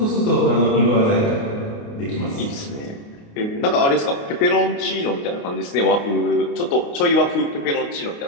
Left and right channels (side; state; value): right; late; 29 ms